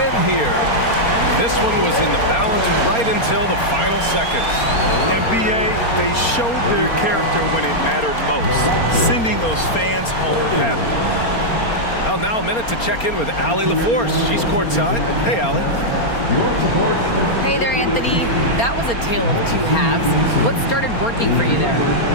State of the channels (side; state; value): right; late; 4.3 ms